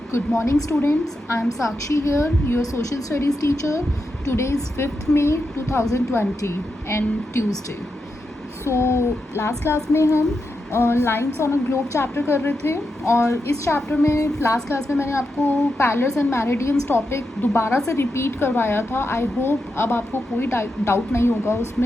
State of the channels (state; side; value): normal; both; correlation 0.87